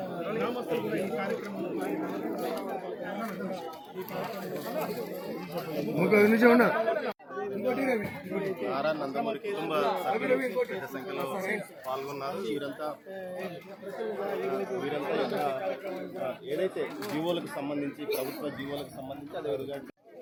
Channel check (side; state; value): both; identical; correlation 1.00